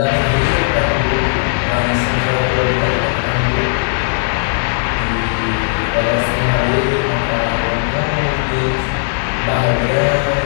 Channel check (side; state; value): right; silent; digital silence